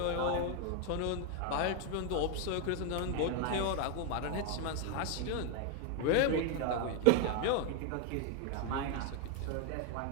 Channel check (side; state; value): both; different; correlation 0.01